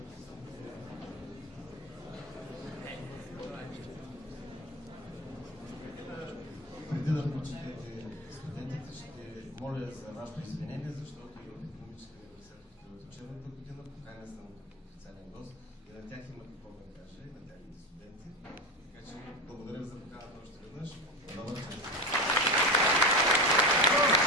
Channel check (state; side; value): normal; both; correlation 0.22